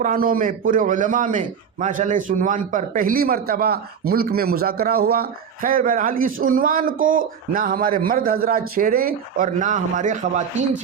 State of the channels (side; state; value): left; quieter; 7.2 dB